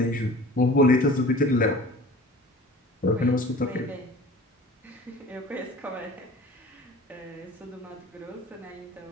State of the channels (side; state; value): both; normal; correlation 0.43